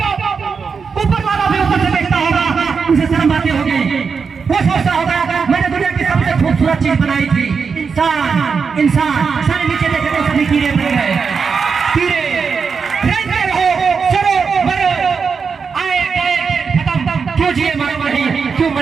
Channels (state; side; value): quieter; left; 5.6 dB